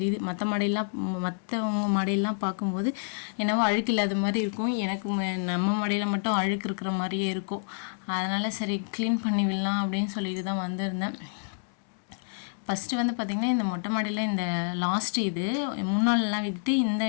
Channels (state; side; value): silent; right; digital silence